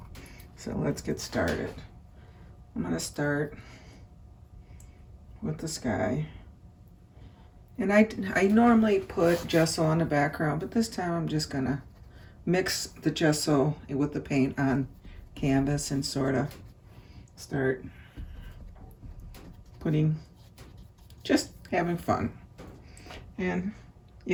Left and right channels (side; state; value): both; identical; correlation 1.00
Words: So let's get started. I'm going to start with the sky. And I normally put gesso on the background, but this time I'm just going to mix the gesso with the paint on canvas and sort of start just having fun. And